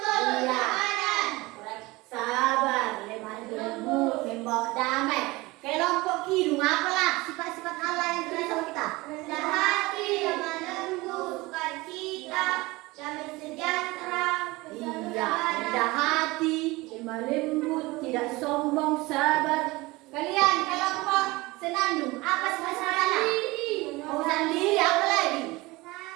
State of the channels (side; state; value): left; quieter; 21.8 dB